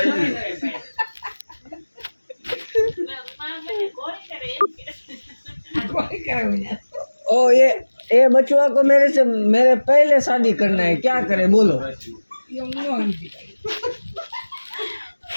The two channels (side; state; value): both; inverted; correlation -1.00